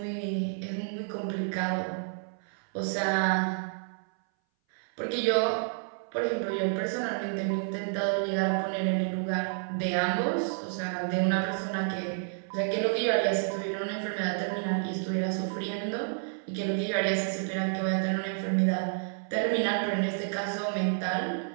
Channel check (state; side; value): silent; left; 58 dB below the other